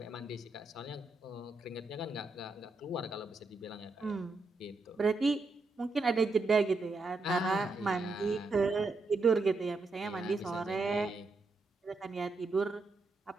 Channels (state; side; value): quieter; left; 3.3 dB